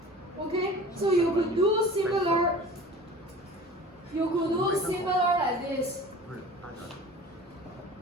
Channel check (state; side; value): normal; both; correlation 0.41